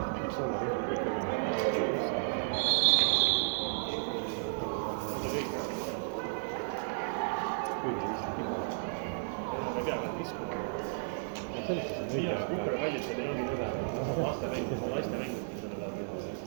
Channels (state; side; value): silent; left; digital silence